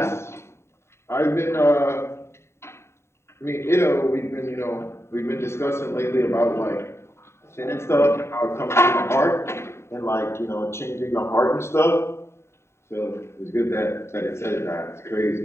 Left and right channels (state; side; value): late; right; 0.13 ms